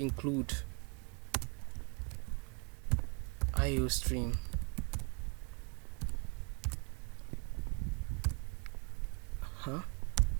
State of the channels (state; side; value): quieter; left; 33.1 dB